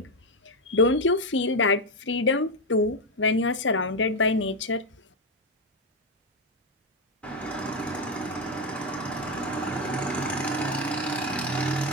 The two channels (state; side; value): normal; both; correlation 0.07